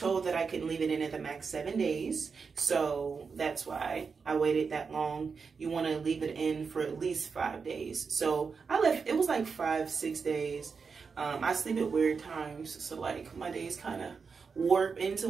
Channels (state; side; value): quieter; left; 5.3 dB